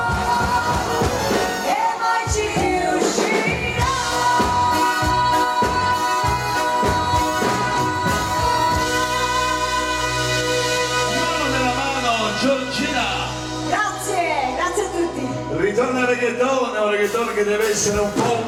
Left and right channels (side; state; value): both; identical; correlation 1.00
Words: e mai ci riuscirà. Mano nella mano, Giorgina. Grazie, grazie a tutti. Ritorna il reggaeton, è un reggaeton che deve essere un po'